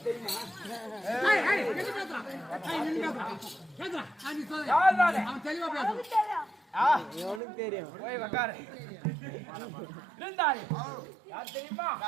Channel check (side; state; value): left; drops out; at 7.4 s